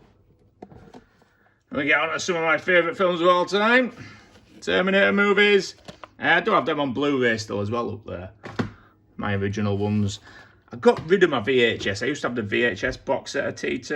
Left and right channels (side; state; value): both; identical; correlation 1.00